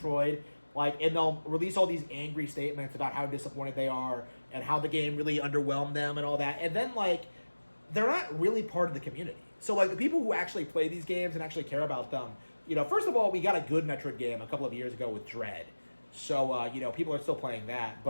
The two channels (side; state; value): both; inverted; correlation -1.00